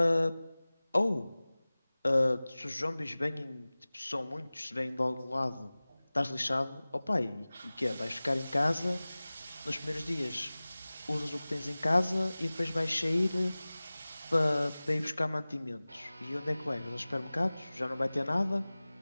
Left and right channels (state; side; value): inverted; both; correlation -0.99